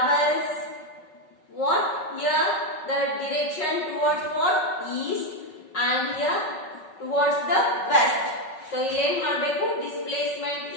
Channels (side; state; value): right; late; 5.3 ms